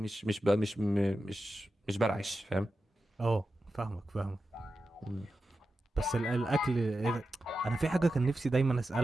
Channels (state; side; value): normal; both; correlation 0.91